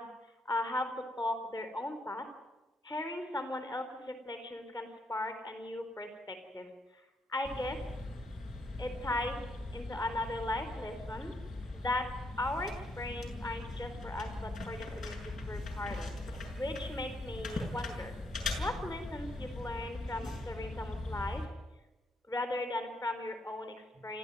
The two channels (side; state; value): both; normal; correlation 0.75